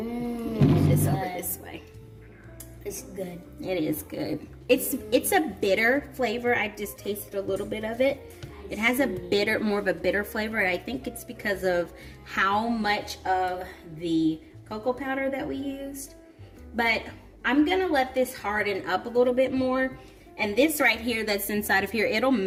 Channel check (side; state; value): both; identical; correlation 1.00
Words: over this way. It's good. It is good. It's a bitter flavor. I just tasted a little bit of it. It has more of a bitter flavor. And I think it's because of how much of the cocoa powder that we used. But I'm gonna let this harden up a little bit more. And this right here that's inside of here, it'll